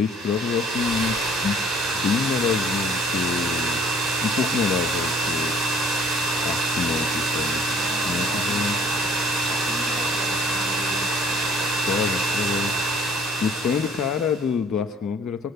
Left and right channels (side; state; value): both; normal; correlation 0.56